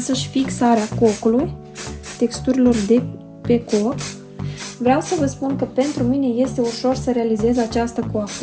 fixarea cocului, texturilor de pe coc. Vreau să vă spun că pentru mine este ușor să realizez această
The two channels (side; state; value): both; identical; correlation 1.00